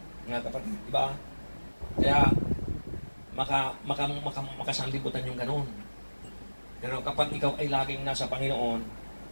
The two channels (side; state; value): both; inverted; correlation -1.00